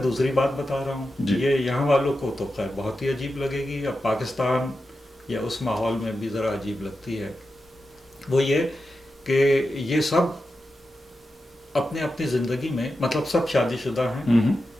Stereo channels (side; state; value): both; normal; correlation 0.90